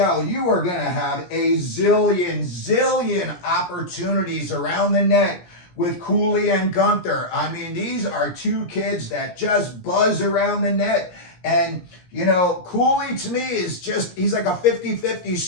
You are going to have a zillion opportunities around the net with Cooley and Gunther. I mean, these are 2 kids that just buzz around the net. And, Cooley to me is he's like a 50-50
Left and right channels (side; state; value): right; late; 17 ms